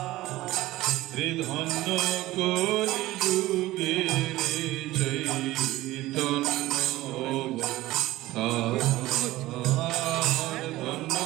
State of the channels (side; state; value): left; quieter; 17.2 dB